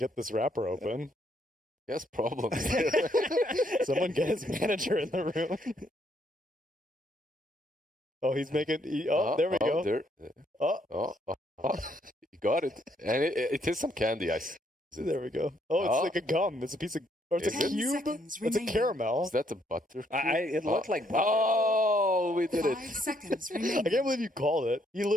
this wrapper open. He has problems. Someone get his manager in the room. Oh, he's making. There we go. There. Oh, You got it. And it is some candy. there we go. Oh, it's Oh. like a gum. It's a piece of. Or it's Is a it? 10 cube. seconds It's a remaining. caramel. Is that a butter? It looked like butter. Oh, we did 5 it. seconds I remaining. can't believe you called it. He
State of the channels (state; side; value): normal; both; correlation 0.71